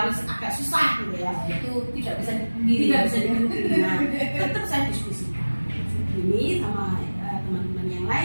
agak susah gitu ya. Itu tidak bisa dipungkiri. Tidak bisa dipungkiri. Nah, tetap saya diskusikan ini sama teman-teman yang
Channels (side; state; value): both; inverted; correlation -1.00